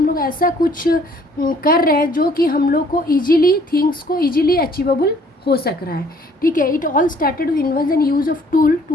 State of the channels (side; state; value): both; normal; correlation 0.59